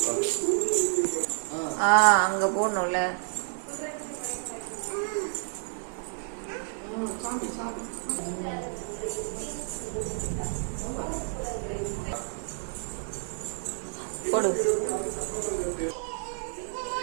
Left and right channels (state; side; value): silent; left; digital silence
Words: அங்க போடணும்ல. போடு.